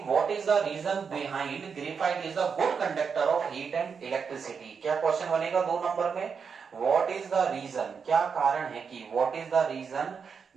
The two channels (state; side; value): quieter; left; 6.1 dB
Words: what is the reason behind graphite is the good conductor of heat and electricity. क्या क्वेश्चन बनेगा 2 नंबर में, व्हाट इज द रीजन, क्या कारण है कि what is the reason